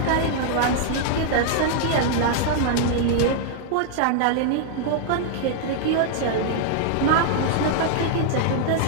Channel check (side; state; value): both; different; correlation 0.00